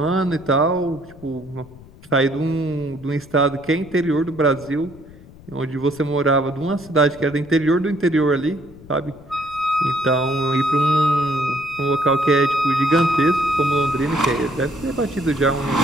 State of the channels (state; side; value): noise; left; rumble, 21 dB below the sound